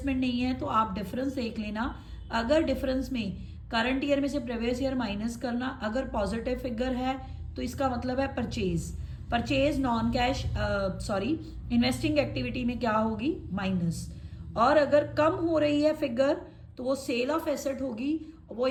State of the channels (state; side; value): identical; both; correlation 1.00